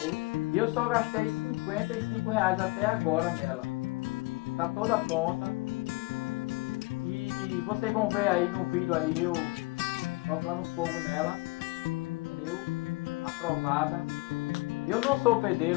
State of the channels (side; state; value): right; quieter; 24.5 dB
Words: e eu só gastei R$ 55 até agora nela. Tá toda pronta. E vocês vão ver aí no vídeo aí eu tocando fogo nela, entendeu? Aprovada. Eu não sou